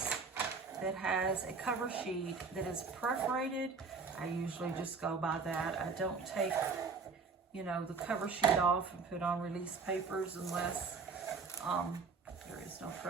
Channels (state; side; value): quieter; left; 4.9 dB